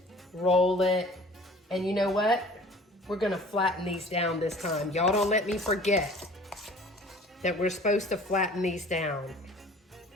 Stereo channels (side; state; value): both; normal; correlation 0.47